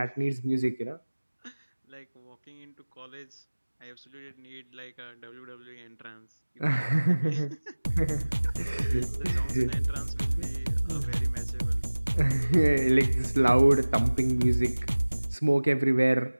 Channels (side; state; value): both; inverted; correlation -1.00